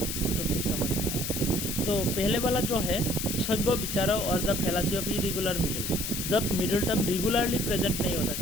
तो फिर समझ में आएगा। तो पहले वाला जो है सभ्य विचारों और द फेलासी ऑफ इरेगुलर मिडल। जब मिडिल टर्म रेगुलरली प्रेजेंट नहीं होता,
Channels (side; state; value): left; noise; hiss, 3 dB below the sound